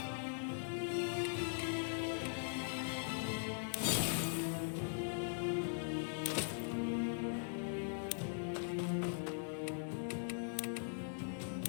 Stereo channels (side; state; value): right; silent; digital silence